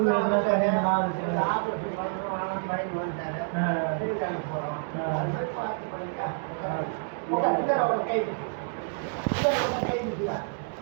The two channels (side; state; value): left; silent; digital silence